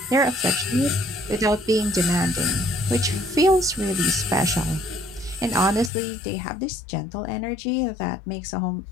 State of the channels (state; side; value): drops out; right; at 5.9 s